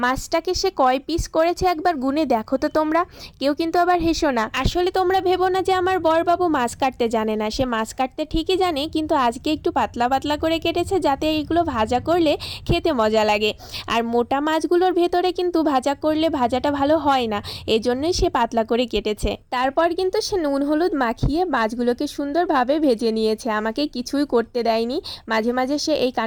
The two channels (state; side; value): identical; both; correlation 1.00